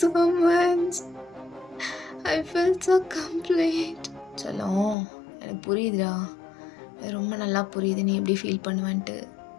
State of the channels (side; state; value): right; drops out; at 5.0 s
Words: much. I feel so complete. செல்லம், எனக்கு புரியுதுடா, ரொம்ப நல்லா புரியுது நீ எப்படி ஃபீல் பண்ணுவேன்ட்டு.